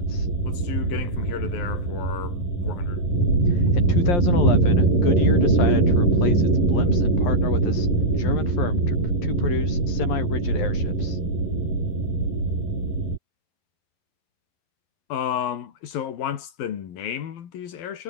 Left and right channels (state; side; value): late; right; 12 ms